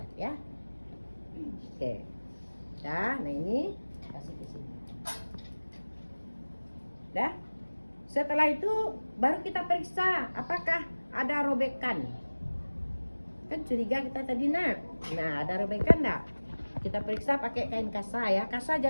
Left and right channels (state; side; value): inverted; both; correlation -1.00